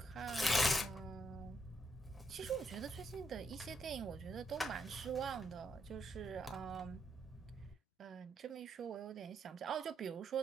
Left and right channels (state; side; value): normal; both; correlation 0.77